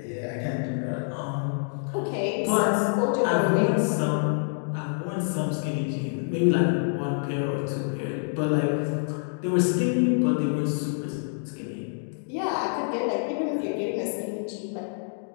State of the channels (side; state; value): right; silent; digital silence